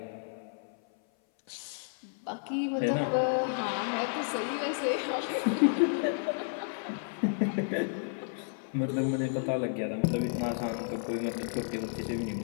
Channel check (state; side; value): silent; right; 57 dB below the other